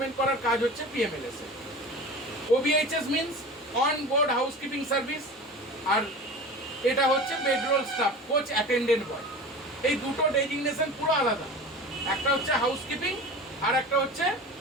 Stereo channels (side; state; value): both; normal; correlation 0.34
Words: করার কাজ হচ্ছে PMLS এ। OBHS means on board housekeeping service, আর এটা হচ্ছে bedroll staff coach attendant boy. এই দুটো ডেজিগনেশন পুরো আলাদা, একটা হচ্ছে হাউসকিপিং আর একটা হচ্ছে